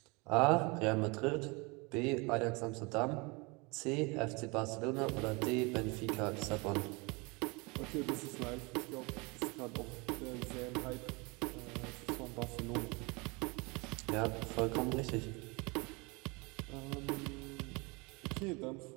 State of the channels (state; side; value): quieter; left; 27.7 dB